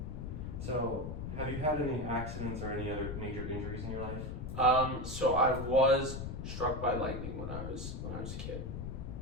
So, have you had any accidents or any other major injuries in your life? So I was struck by lightning when I was a kid.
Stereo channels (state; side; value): noise; left; rumble, 6 dB below the sound